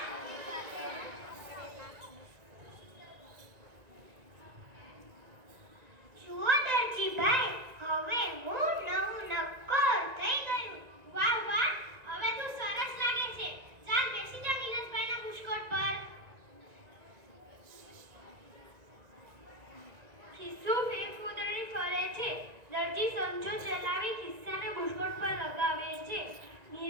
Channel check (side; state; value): left; late; 1.9 ms